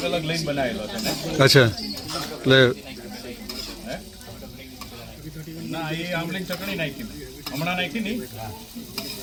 અલગ લઈને બનાવેલો છે ને. અચ્છા એટલે ના એ આમલીની ચટણી નાખી હમણાં નાખી નહીં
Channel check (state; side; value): identical; both; correlation 1.00